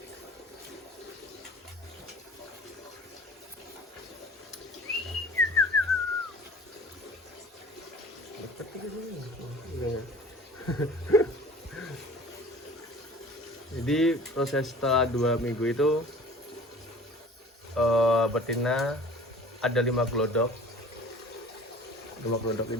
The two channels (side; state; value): both; normal; correlation 0.45